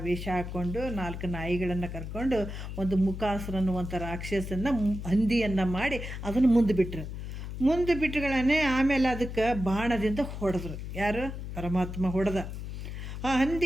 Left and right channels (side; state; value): left; noise; hum, 7 dB below the sound